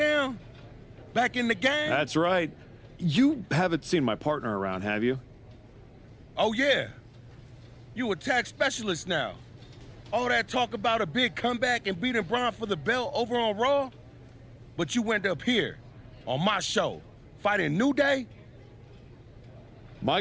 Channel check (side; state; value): both; identical; correlation 1.00